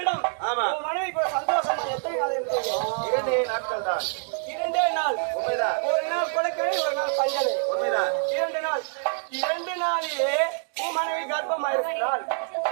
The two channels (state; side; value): silent; left; digital silence